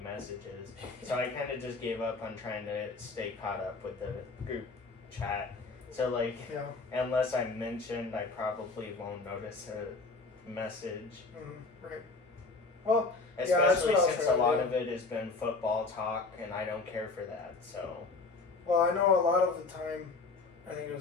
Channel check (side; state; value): right; quieter; 3.8 dB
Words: messages. So I kind of just gave up on trying to stay caught up with the group chat. So, like, Yeah. unless I'm mentioned, I probably won't notice a message. Right. Well, Especially what I was since a trying to lot do. of it has been football talk, and I don't care for that, so. Well, I know a lot of the time, I think it